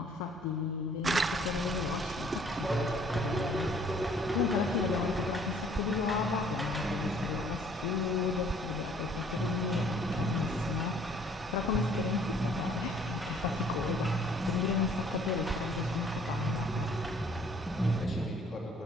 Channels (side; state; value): both; normal; correlation 0.58